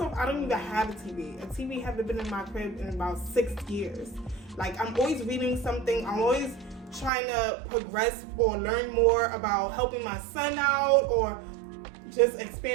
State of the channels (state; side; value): drops out; left; at 7.1 s